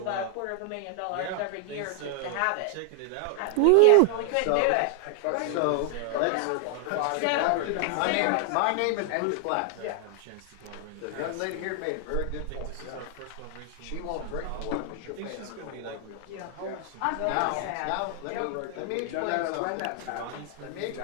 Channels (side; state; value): both; different; correlation 0.00